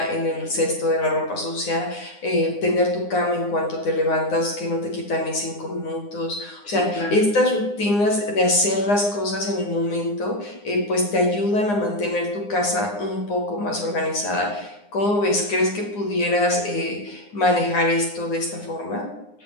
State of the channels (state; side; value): late; right; 9.8 ms